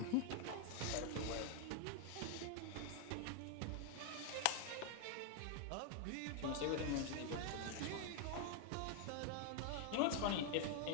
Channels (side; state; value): both; different; correlation 0.00